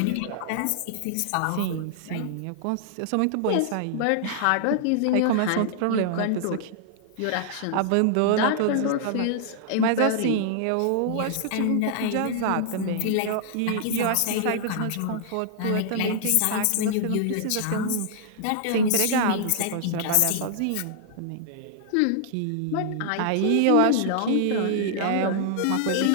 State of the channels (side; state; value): both; different; correlation -0.01